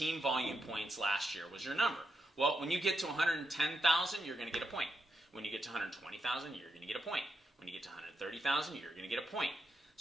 volume points last year was your number. Well, when you get to 110,000, you're going to get a point. When you get to 120,000, you're going to get a point. When you get to 130,000, you're going to get a point.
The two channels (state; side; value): normal; both; correlation 0.84